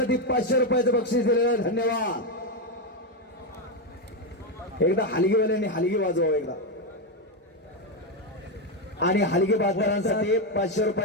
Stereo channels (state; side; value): normal; both; correlation 0.07